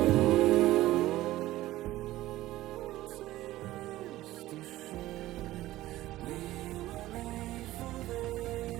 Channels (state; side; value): quieter; left; 16.0 dB